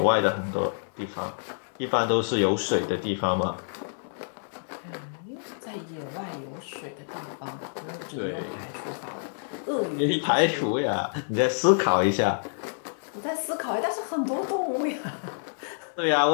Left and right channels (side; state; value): right; silent; digital silence